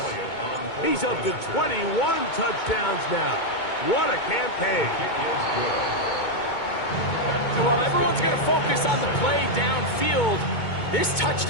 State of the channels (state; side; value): late; right; 2.2 ms